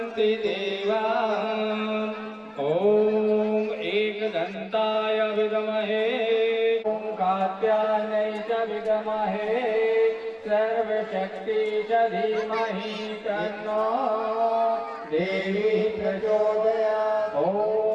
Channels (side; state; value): both; identical; correlation 1.00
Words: देवा ओम एकदन्ताय विद्महे ओम कात्यायनै च विद्महे सर्वशक्ति च धीमहि तन्नो देवी प्रचोदयात्